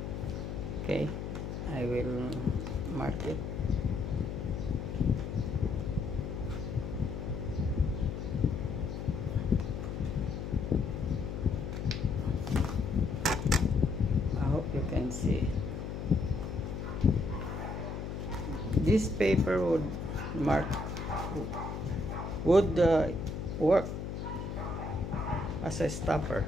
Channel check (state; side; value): noise; left; hum, 5 dB below the sound